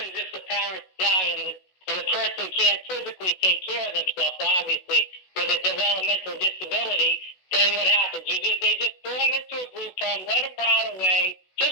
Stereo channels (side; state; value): right; late; 16 ms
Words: if the parents die and the person can't physically take care of themselves, obviously, with a developmental disability? Then what happens? They just throw them into a group home, let them rot away,